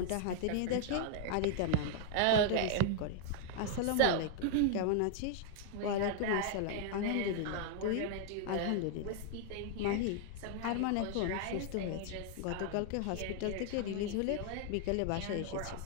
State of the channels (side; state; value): both; different; correlation -0.01